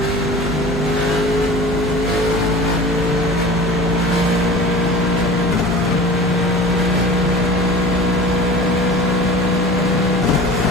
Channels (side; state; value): both; normal; correlation 0.37